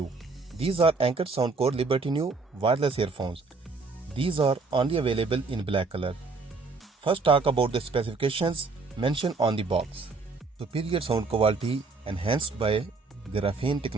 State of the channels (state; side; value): quieter; left; 4.1 dB